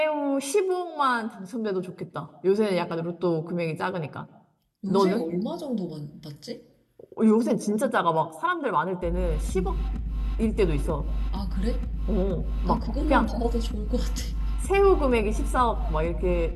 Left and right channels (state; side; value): identical; both; correlation 1.00